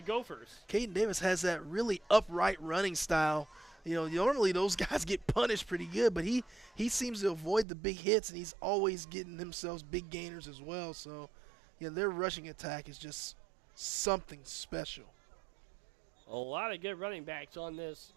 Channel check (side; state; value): left; drops out; at 7.7 s